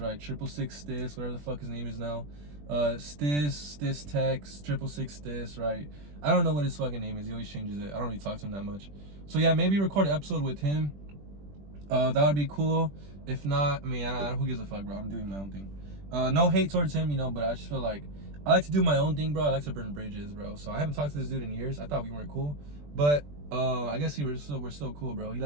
666 Stis, whatever the fuck his name is now. Stis Tex, 666 Stis, right? I don't know what his fucking name is. He always changes it. I don't really talk to him that much. So yeah, maybe record an episode with him. That would be cool. If not, I mean, who gives a fuck, bro? I'm doing my own thing. No hate towards him, you know, but I just feel like I like to do my own thing, bro. I like to burn bridges, bro. So I haven't talked to this dude in years. I thought we weren't cool, but I guess we're still cool, bro. He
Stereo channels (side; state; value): left; late; 20 ms